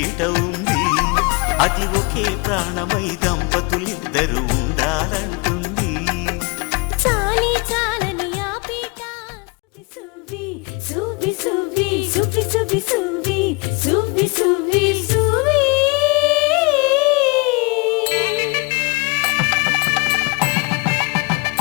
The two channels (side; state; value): right; quieter; 28.8 dB